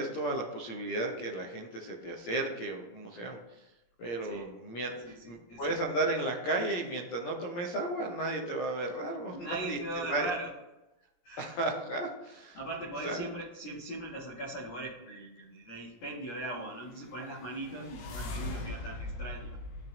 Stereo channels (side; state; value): right; late; 17 ms